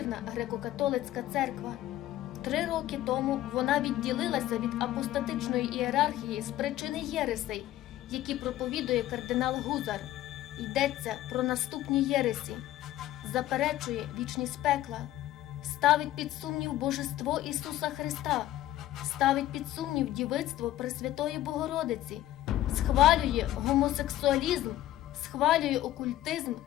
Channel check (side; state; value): right; quieter; 14.2 dB